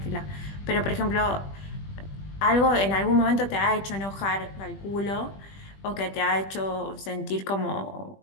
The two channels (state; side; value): late; right; 20 ms